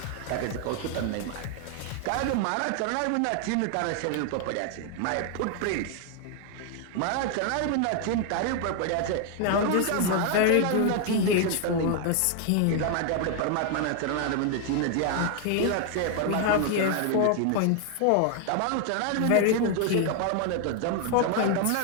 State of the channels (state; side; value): different; both; correlation 0.00